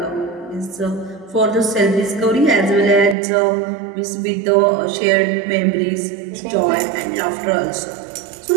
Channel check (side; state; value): left; drops out; at 3.2 s